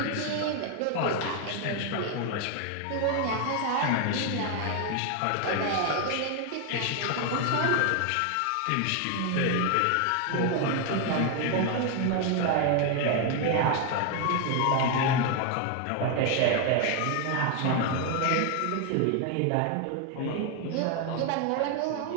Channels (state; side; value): different; both; correlation 0.01